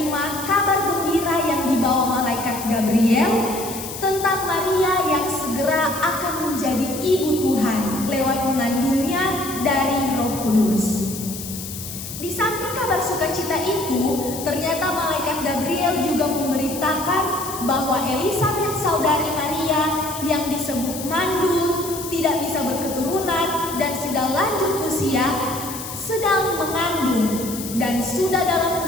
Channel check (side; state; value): left; noise; hiss, 9 dB below the sound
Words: kabar gembira yang dibawa malaikat Gabriel tentang Maria yang segera akan menjadi ibu Tuhan lewat mengandungnya dari Roh Kudus. Di samping kabar sukacita itu, ternyata malaikat Gabriel juga memberitakan bahwa Elisabet saudari Maria yang disebut mandul, tidak bisa berketurunan dan sudah lanjut usia, sedang mengandung dan sudah dalam